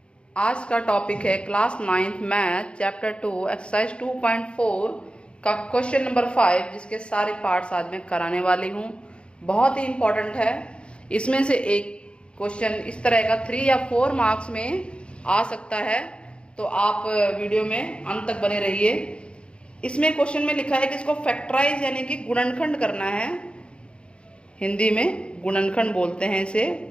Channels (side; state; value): right; late; 0.057 ms